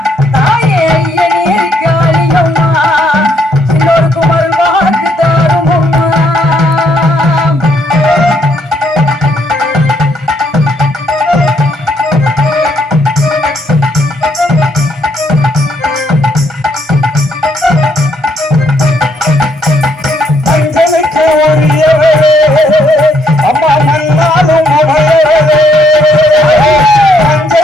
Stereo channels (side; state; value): both; normal; correlation 0.71